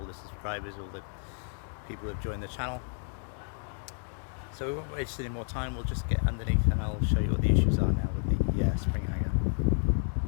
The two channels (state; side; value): silent; right; 57 dB below the other